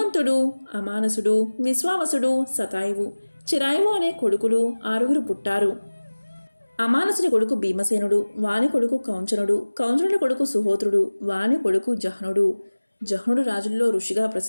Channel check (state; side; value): inverted; both; correlation -1.00